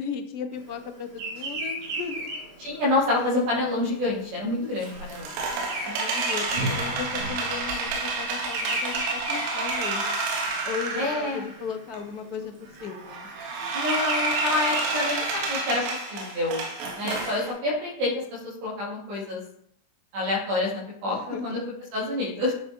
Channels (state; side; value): late; left; 20 ms